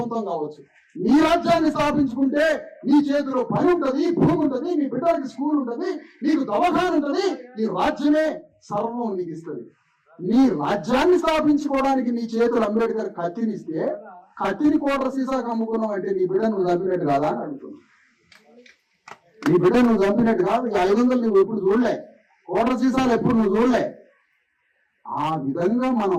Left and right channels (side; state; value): both; identical; correlation 1.00